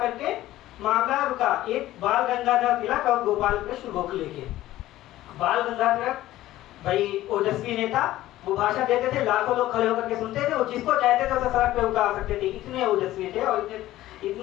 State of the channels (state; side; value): quieter; right; 15.1 dB